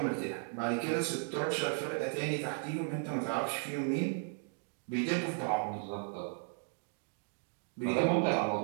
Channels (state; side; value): silent; left; 54 dB below the other